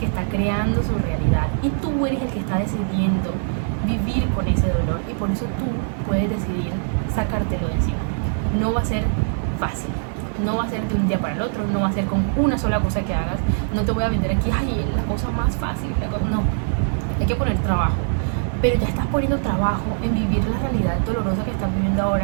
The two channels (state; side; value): silent; left; digital silence